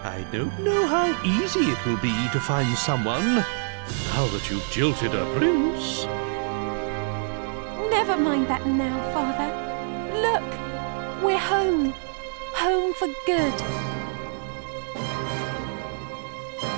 I don't know how easy it will be to find someone now that you've jilted a prince. Never mind that now, Father. Look, we're home. Home for good.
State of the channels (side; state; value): left; silent; 61 dB below the other